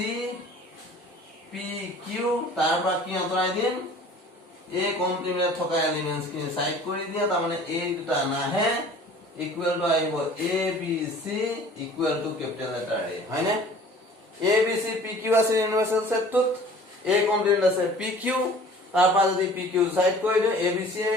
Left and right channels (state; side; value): normal; both; correlation 0.48